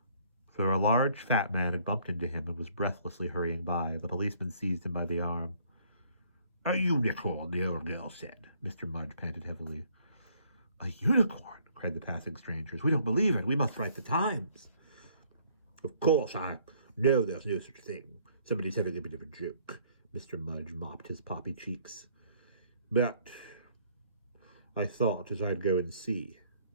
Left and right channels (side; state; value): both; inverted; correlation -0.62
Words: For a large fat man had bumped into him and was breathlessly hurrying by. The policeman seized him by the arm. A unicorn, the old girl said. Mr. Mudge panted heavily. A unicorn, cried the passing strangers. We don't believe it. We must write the Times. Of course, I know there's no such thing. Somebody's having a bit of a joke. Mr. Mudge mopped his poppy cheeks. But I thought as I'd go and see.